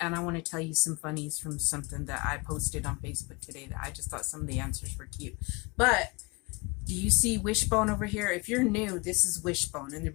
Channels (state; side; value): quieter; right; 27.7 dB